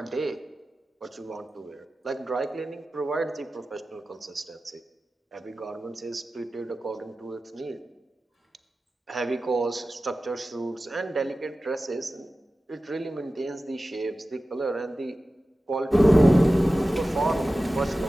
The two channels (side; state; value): both; normal; correlation 0.95